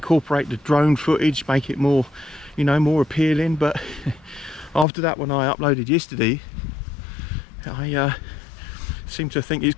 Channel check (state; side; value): drops out; right; at 4.9 s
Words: the drone footage, make it more, you know, more appealing. But after that one I uploaded yesterday, I seem to think it's